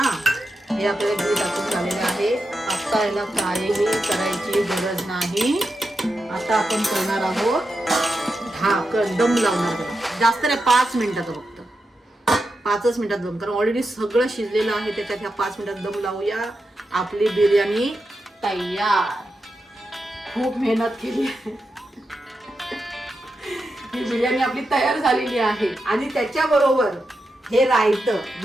हे आपल्याला घी टाकून झालेलं आहे. आता याला काहीही करायची गरज नाही. आता आपण करणार आहोत ढाकण, दम लावणार त्याला. जास्त नाही, 5 मिनिटाचं फक्त. 5च मिनिटात दम, कारण ऑलरेडी सगळं शिजलेलं आहे त्याच्यात. ह्या 5 मिनिटात दम लावूया. आपली बिर्याणी तयार. खूप मेहनत केली आहे. ही बिर्याणी आपली तयार झालेली आहे. आणि त्याच्याबरोबर हे रायतं,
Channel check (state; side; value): normal; both; correlation 0.88